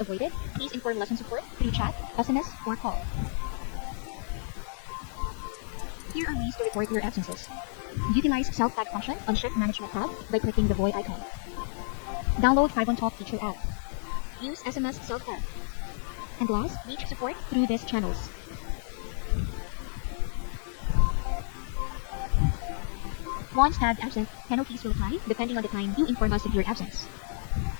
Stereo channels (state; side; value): silent; right; digital silence